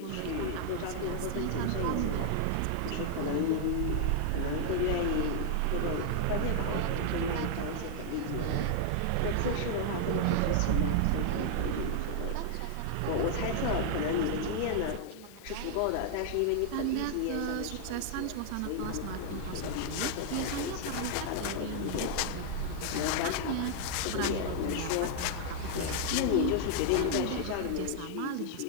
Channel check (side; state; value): both; different; correlation -0.01